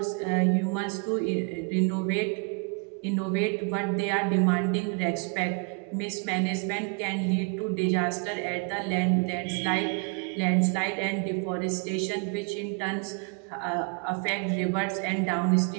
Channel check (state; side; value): quieter; left; 35.8 dB